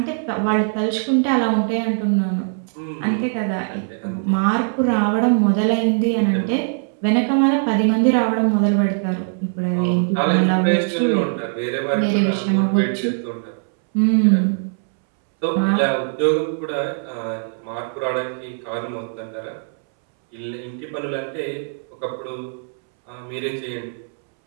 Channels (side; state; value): left; silent; 65 dB below the other